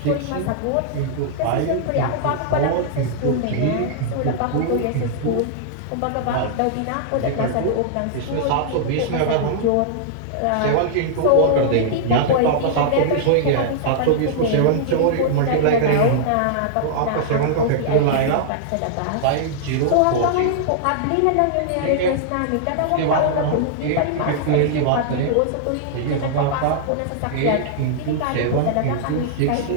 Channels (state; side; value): different; both; correlation -0.01